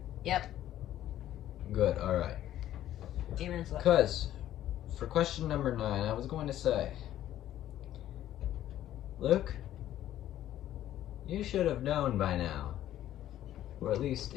Yep. Good, alright. Even it's like Because, for question number 9, I was going to say, Luke, you should have known by now, or at least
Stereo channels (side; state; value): right; quieter; 12.5 dB